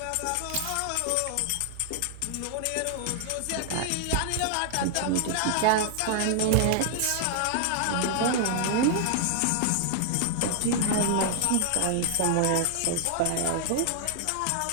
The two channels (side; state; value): both; different; correlation 0.00